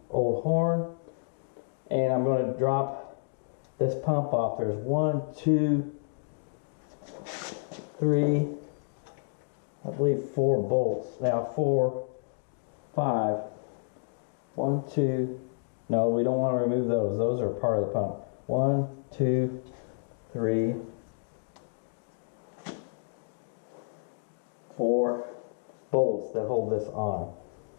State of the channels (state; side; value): silent; right; digital silence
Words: old horn, and I'm going to drop this pump off. There's 1, 2, 3, I believe 4 bolts. Now 4, 5. 1, 2, no, we don't want to remove those. Those are part of the pump. 1, 2, 3, 4 bolts that hold this on.